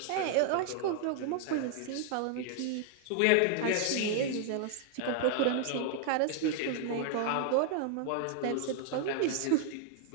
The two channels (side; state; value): both; different; correlation 0.00